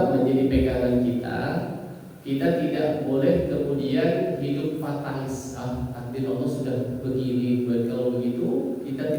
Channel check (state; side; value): identical; both; correlation 1.00